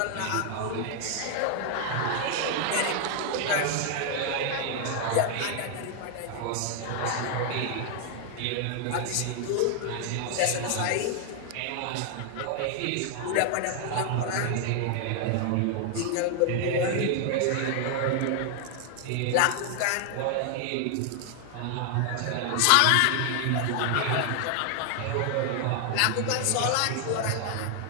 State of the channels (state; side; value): different; both; correlation 0.00